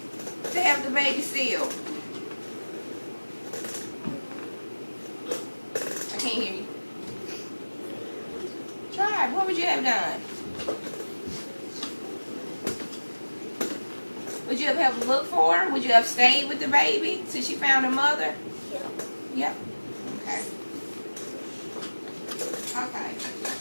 to help the baby seal? I can't hear you. Try. What would you have done? Would you have helped look for her? Would you have stayed with the baby till she found her mother? Yep. Okay. Okay.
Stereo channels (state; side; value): inverted; both; correlation -1.00